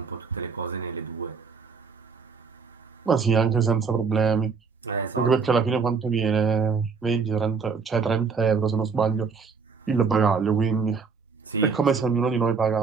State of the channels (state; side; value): quieter; left; 5.3 dB